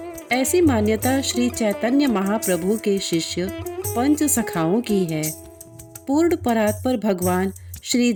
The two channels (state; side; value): identical; both; correlation 1.00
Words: ऐसी मान्यता श्री चैतन्य महाप्रभु के शिष्य पंच सखाओं की है। पूर्ण परात्पर भगवान श्री